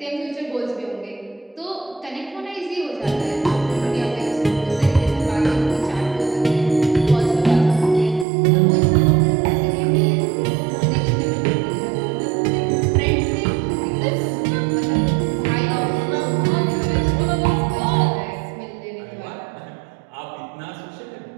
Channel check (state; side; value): drops out; left; at 8.2 s